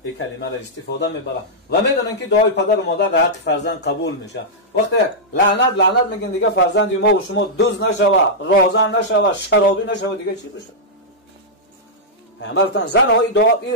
این کلمه را استفاده میبره و میدونن که دعای پدر و مادر در حق فرزند قبول میشه. وقتی لعنت میگن دیگه فرزند ما و شما دزد نشوه، رازن نشوه، شرابی نشوه، دیگه چی بشه؟ پیامبرتان زن های دعا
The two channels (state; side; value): normal; both; correlation -0.09